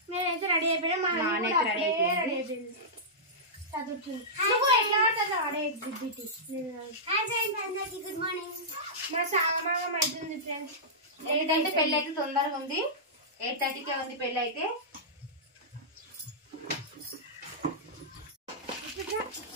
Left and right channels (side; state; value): both; normal; correlation -0.14